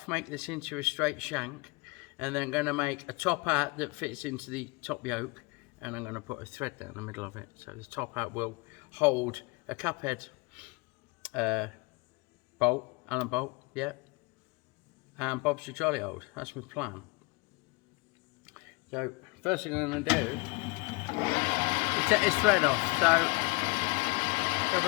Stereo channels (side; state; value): right; quieter; 26.6 dB